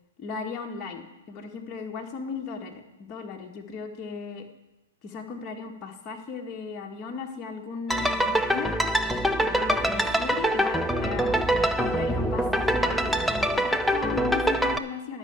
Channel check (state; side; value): normal; both; correlation 0.70